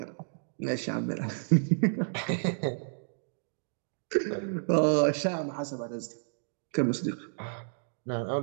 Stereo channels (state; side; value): silent; left; digital silence